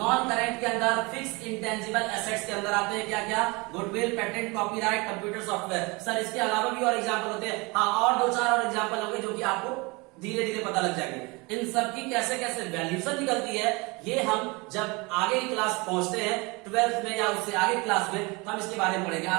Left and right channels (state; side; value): quieter; left; 26.6 dB